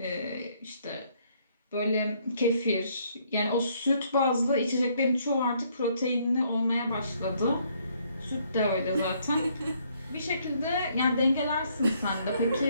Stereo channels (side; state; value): both; inverted; correlation -0.68